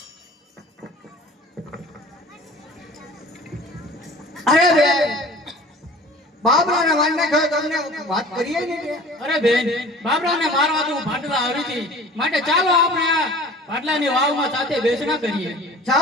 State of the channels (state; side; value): normal; both; correlation 0.45